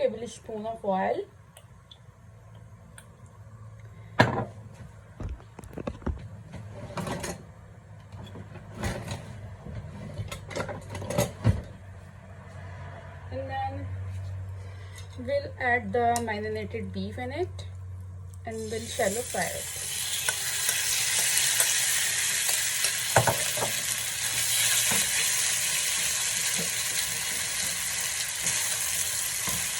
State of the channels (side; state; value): both; identical; correlation 1.00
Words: of oil. And then we'll add the marinated beef in it and we'll shallow fry it.